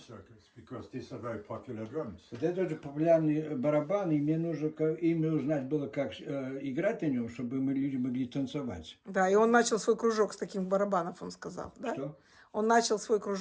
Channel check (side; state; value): both; identical; correlation 1.00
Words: because these are very popular drums. Вот это тоже популярный барабан, и мне нужно именно узнать было, как играть на нем, чтобы мы люди могли танцевать. Да, и он начал свой кружок с таких барабанов, он сказал, да? Что? Он начал свой